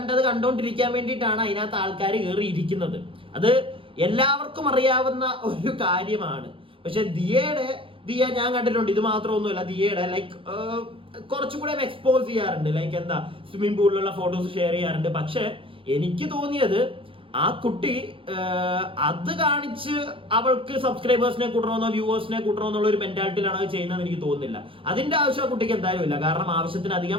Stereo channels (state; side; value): late; left; 0.25 ms